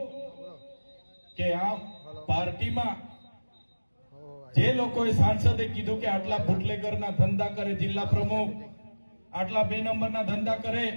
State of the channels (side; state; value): both; inverted; correlation -1.00